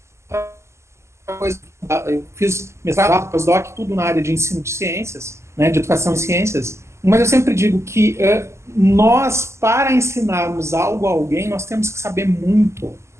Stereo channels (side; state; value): left; late; 0.13 ms